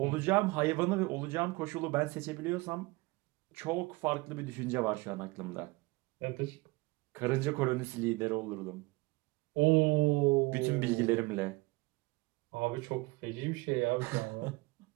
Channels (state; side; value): quieter; left; 23.8 dB